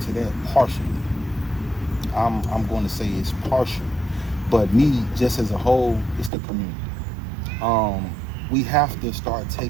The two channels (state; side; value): drops out; left; at 6.3 s